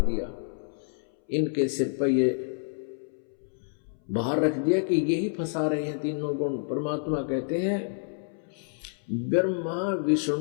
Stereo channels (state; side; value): silent; right; 59 dB below the other